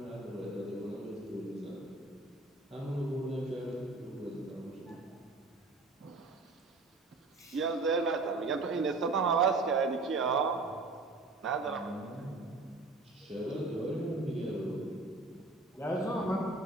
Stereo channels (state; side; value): quieter; left; 3.3 dB